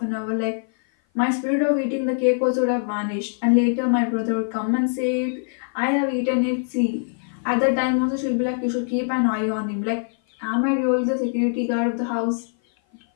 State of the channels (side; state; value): right; silent; 56 dB below the other